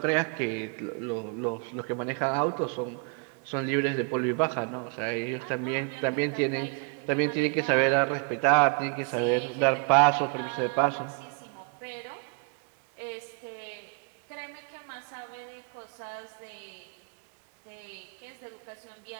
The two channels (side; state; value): left; quieter; 39.2 dB